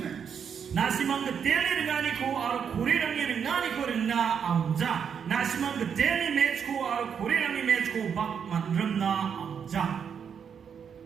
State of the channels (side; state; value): left; quieter; 7.3 dB